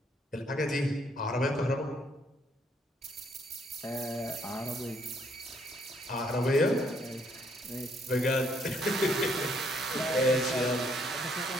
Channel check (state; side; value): normal; both; correlation 0.68